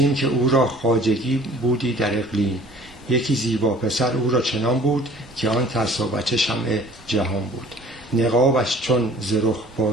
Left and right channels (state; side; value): normal; both; correlation 0.51